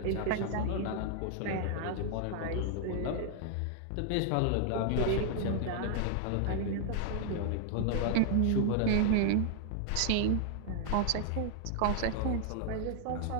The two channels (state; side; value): different; both; correlation 0.00